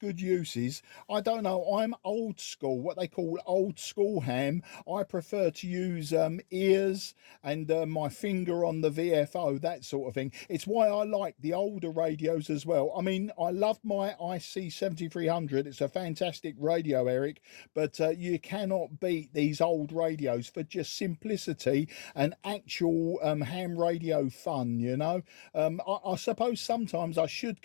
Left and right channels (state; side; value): silent; right; digital silence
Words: uses. I don't know. I'm old school, what they call old school ham. I prefer to use ears and my finger on the VFO, that sort of thing. It's why I like the older radios as well. I mean, I love my IC7300. It's a fantastic radio, Eric, but you cannot beat these old radios for just simplicity and actual ham radio fun, you know. I suppose sometimes I should